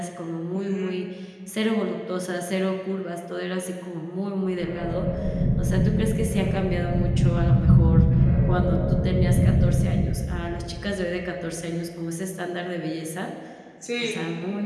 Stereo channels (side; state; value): both; identical; correlation 1.00